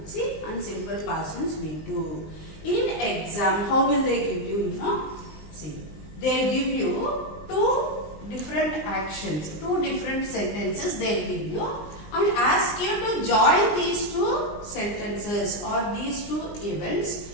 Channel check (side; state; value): right; late; 20 ms